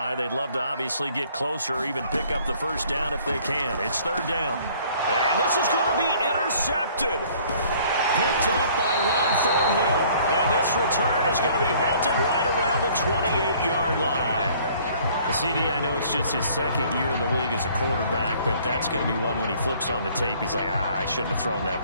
They'd love to obviously get closer or even pick up the first down if they can. It's 3rd down. And this is going to be intercepted. Picked up by Ron Thornhill. And this return is going to be halted right around the 28-yard line. CD, I know it's just his 2nd year in the league as a quarterback, but that's going to be one when he flips on the tape, he's like, I shouldn't have thrown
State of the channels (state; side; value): inverted; both; correlation -0.57